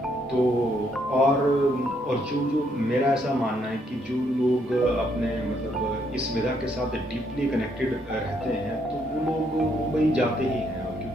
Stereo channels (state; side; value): normal; both; correlation 0.72